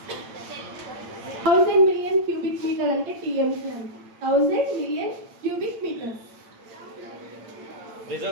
1000 మిలియన్ క్యూబిక్ మీటర్ అంటే టీఎంసీ అంట. 1000 మిలియన్ క్యూబిక్ మీటర్.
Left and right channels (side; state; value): left; late; 8.9 ms